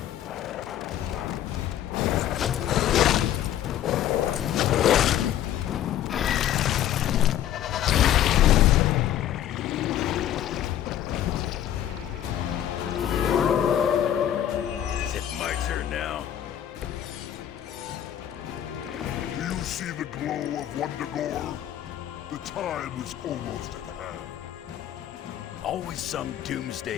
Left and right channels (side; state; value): right; quieter; 11.2 dB